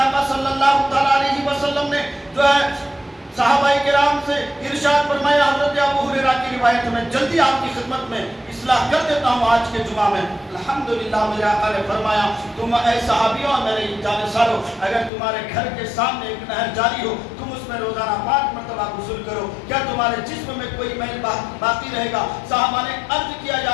صلی اللہ تعالیٰ علیہ وسلم نے جو ہے صحابہ کرام سے ارشاد فرمایا، حضرت ابو ہریرہ کی روایت میں جلدی آپ کی خدمت میں اصلاح کر دیتا ہوں آج کے جمعہ میں۔ الحمدللہ میرے آقا نے فرمایا، تم اے صحابیوں میرے جانشینوں، اگر تمہارے گھر کے سامنے ایک نہر جاری ہو، تم اس میں روزانہ 5 مرتبہ غسل کرو، کیا تمہارے جسم میں کوئی میل باقی رہے گا؟ صحابہ نے عرض کیا،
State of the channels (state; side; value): drops out; right; at 15.1 s